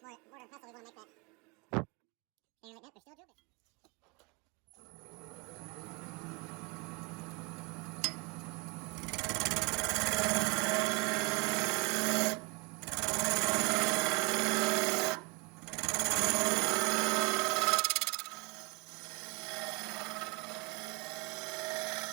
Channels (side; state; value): left; quieter; 29.2 dB